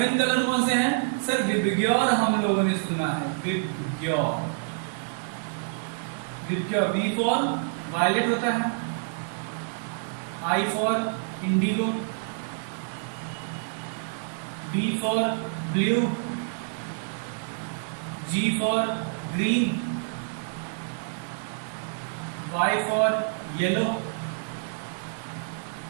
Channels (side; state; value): left; silent; digital silence